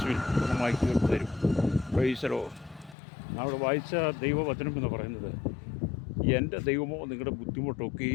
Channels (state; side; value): drops out; right; at 3.0 s